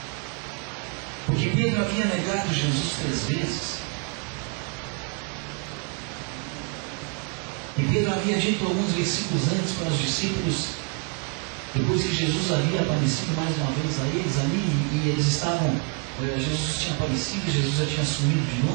Porque Pedro havia negado Jesus 3 vezes. E Pedro havia dito alguns versículos antes para os discípulos, depois que Jesus havia aparecido mais uma vez a eles ali, e eles estavam, Jesus tinha aparecido, Jesus já tinha sumido de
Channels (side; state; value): left; quieter; 39.1 dB